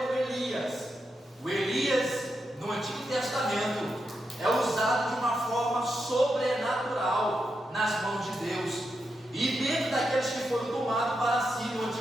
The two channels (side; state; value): both; normal; correlation 0.85